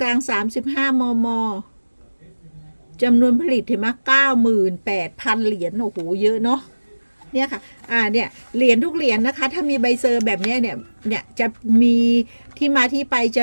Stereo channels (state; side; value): inverted; both; correlation -1.00